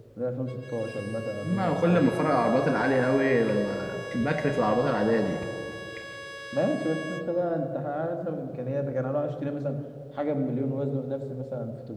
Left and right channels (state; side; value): identical; both; correlation 1.00